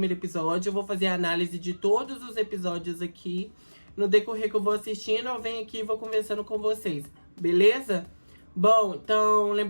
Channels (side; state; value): both; inverted; correlation -1.00